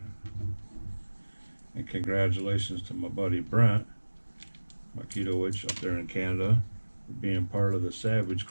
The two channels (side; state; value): both; inverted; correlation -1.00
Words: And congratulations to my buddy Brent Makitowicz up there in Canada for being part of the Savage